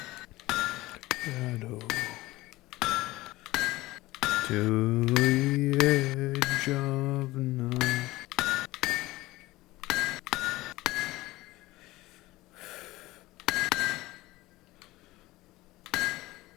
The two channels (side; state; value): right; quieter; 18.8 dB